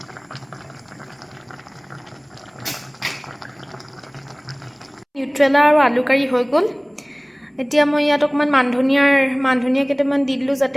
নিউট্ৰেলা আৰু আলু কাৰী হৈ গ'ল। এতিয়া মই ইয়াত অকণমান মানধনিয়া কেইটামান দি দিলোঁ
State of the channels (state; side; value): identical; both; correlation 1.00